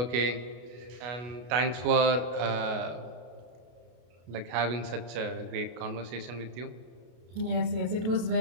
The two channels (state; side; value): late; left; 32 ms